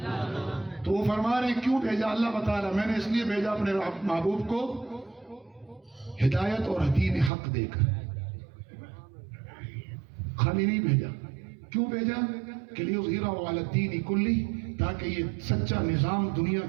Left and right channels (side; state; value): left; drops out; at 7.3 s